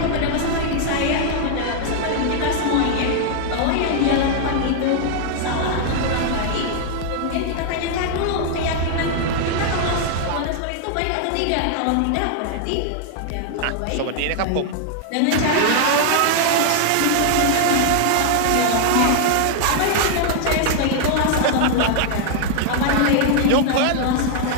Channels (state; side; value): different; both; correlation 0.00